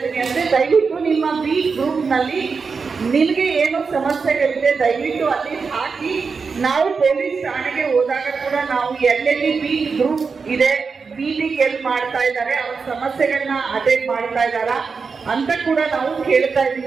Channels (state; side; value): quieter; left; 5.1 dB